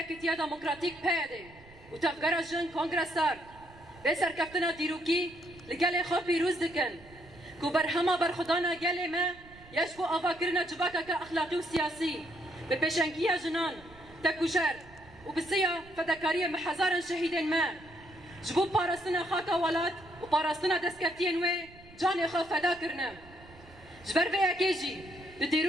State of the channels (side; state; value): right; noise; rumble, 23 dB below the sound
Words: یکیتیا دموکراتیک پیاده و تفکر جن کنگرسار به سرکفتنا دیروکی لگل خو پیروز دکن کو بر همه برخدانا گل ما یشبو آوا کرنا جباکا که اخلاقی و سیاسی به پیشنگی جنان تکوشر و بسیار فداکاری محزارن شهیدن ما جبو پاراستنا خاکا ولات و پاراستنا دستکفتین و جان خو فدا کرنا جبر به یکیجی